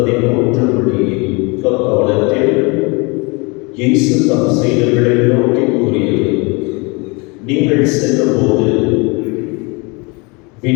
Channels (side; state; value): right; quieter; 28.7 dB